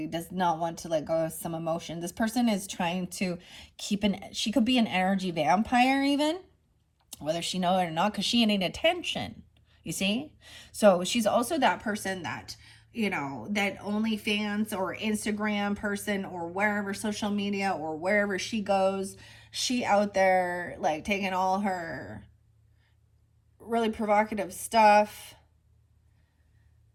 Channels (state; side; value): identical; both; correlation 1.00